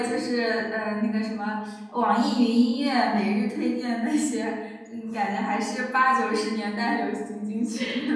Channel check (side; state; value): both; identical; correlation 1.00